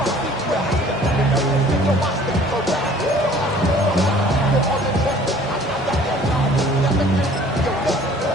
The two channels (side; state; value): both; normal; correlation 0.52